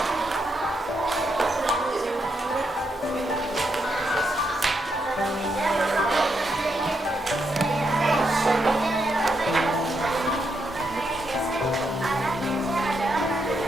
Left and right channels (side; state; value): both; normal; correlation 0.80